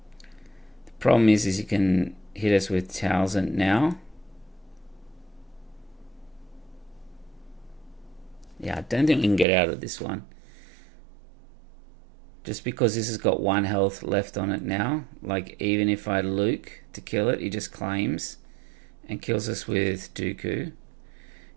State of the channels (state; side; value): drops out; left; at 9.5 s